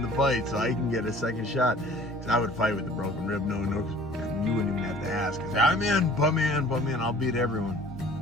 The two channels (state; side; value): normal; both; correlation 0.50